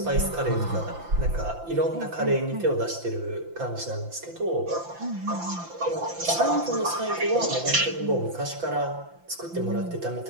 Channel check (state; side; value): late; left; 5.9 ms